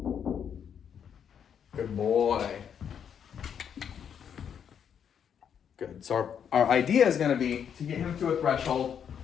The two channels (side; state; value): right; quieter; 8.1 dB